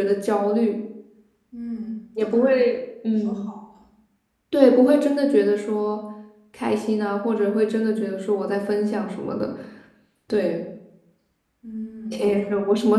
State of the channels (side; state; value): both; identical; correlation 1.00